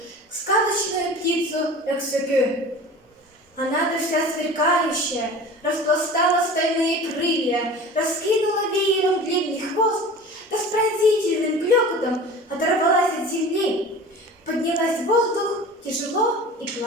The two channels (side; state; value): both; normal; correlation 0.38